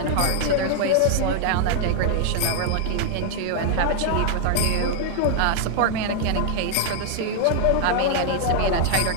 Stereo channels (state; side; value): different; both; correlation 0.00